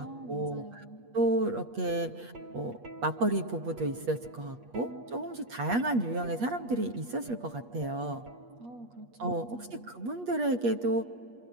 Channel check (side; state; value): left; late; 8.4 ms